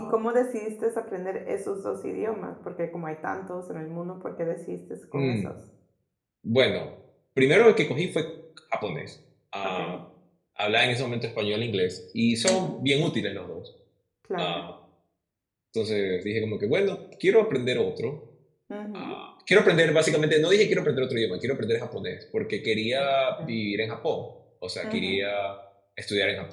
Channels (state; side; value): identical; both; correlation 1.00